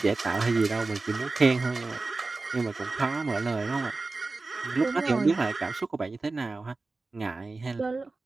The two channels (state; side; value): quieter; left; 3.6 dB